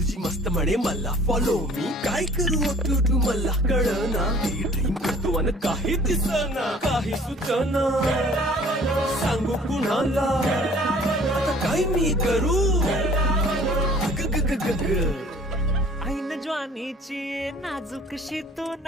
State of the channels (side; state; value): both; normal; correlation 0.52